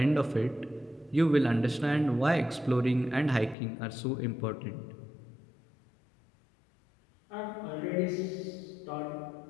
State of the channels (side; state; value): right; drops out; at 3.6 s